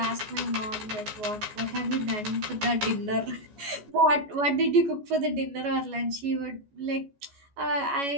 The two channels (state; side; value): late; left; 14 ms